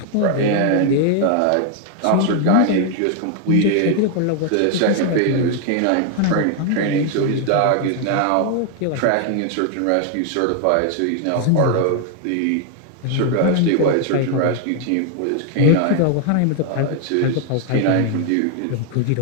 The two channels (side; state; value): both; different; correlation 0.00